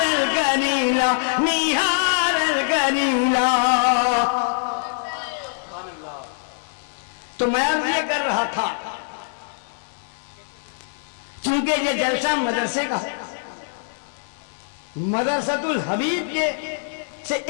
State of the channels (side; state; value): right; silent; 63 dB below the other